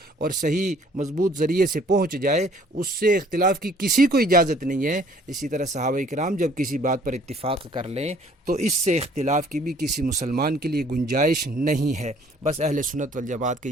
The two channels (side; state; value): both; normal; correlation 0.58